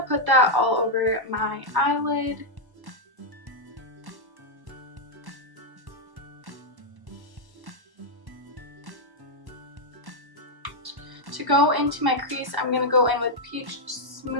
put that all over my eyelid. To go into my crease, I'm gonna go in with Peach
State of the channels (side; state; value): left; late; 1.1 ms